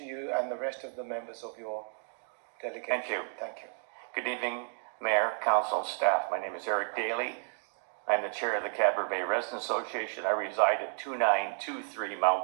you and the rest of the members of your delegation. Thank you. Thank you. Good evening, Mayor, Council, and staff. My name is Eric Daly. I'm the chair of the Cadboro Bay Residents Association. I reside at 2923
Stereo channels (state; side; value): silent; left; 56 dB below the other